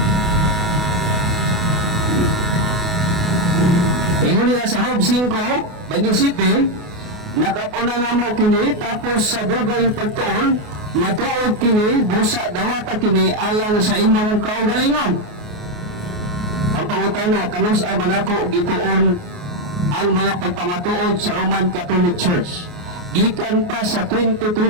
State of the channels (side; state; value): left; late; 28 ms